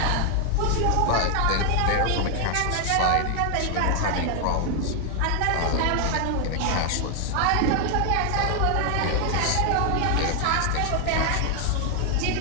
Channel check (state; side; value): different; both; correlation 0.00